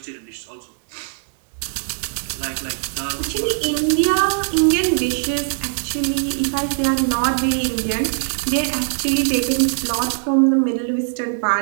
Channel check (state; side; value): silent; left; digital silence